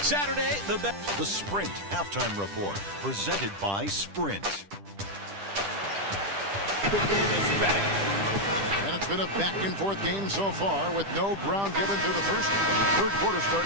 Saturday, The Sprint Halftime Report, presented by Sprint. And it's been a back-and-forth game so far with no ground given through the first. Third quarter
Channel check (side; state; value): left; late; 10 ms